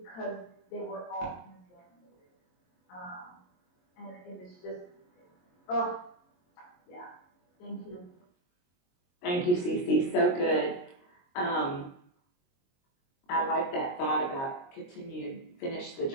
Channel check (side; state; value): right; late; 22 ms